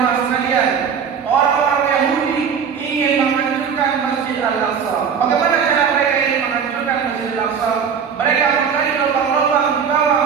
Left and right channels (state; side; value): quieter; left; 6.9 dB